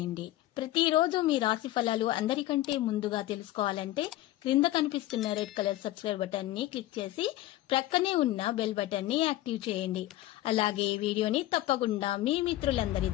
ప్రతిరోజు మీ రాశి ఫలాలు అందరికంటే ముందుగా తెలుసుకోవాలంటే క్రింద కనిపిస్తున్న రెడ్ కలర్ సబ్స్క్రైబ్ బటన్ ని క్లిక్ చేసి ప్రక్కనే ఉన్న బెల్ బటన్ ని యాక్టివ్ చేయండి. అలాగే ఈ వీడియోని తప్పకుండా మీ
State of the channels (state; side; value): quieter; right; 15.6 dB